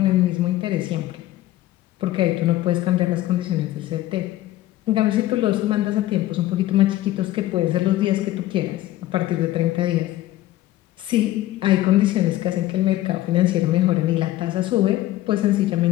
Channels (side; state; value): right; quieter; 15.3 dB